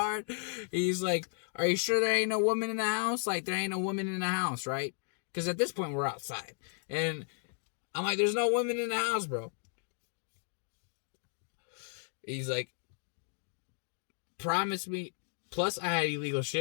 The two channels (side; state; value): right; silent; 55 dB below the other